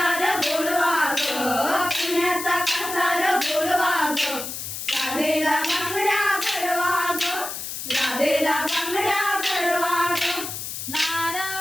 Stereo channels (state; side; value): noise; left; hiss, 7 dB below the sound